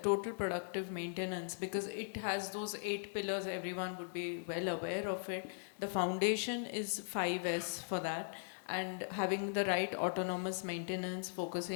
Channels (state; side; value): silent; right; digital silence